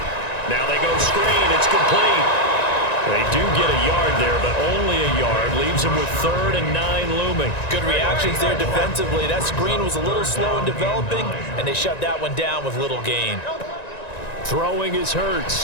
Now they go screen. It's complete. They do get a yard there, but only a yard. Leaves them with 3rd and 9 looming. Good reactions there defensively. That screen was a little slow in developing, and they shut that one down with little gain. Throwing is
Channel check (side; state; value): right; late; 1.9 ms